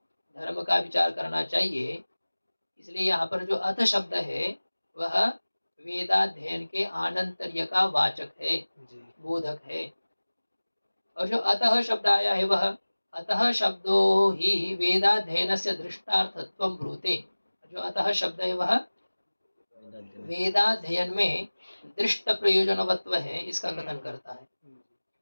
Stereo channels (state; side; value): inverted; both; correlation -1.00